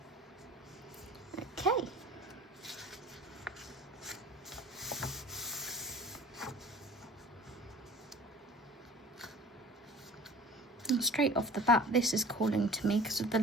Okay. And straight off the bat, this is calling to me because of the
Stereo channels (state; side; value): normal; both; correlation 0.45